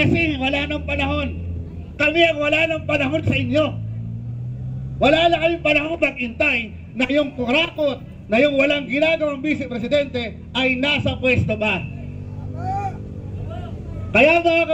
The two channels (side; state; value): both; identical; correlation 1.00